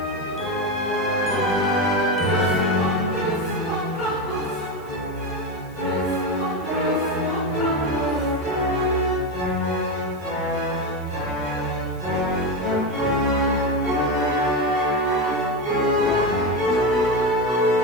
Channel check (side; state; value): right; noise; hiss, 27 dB below the sound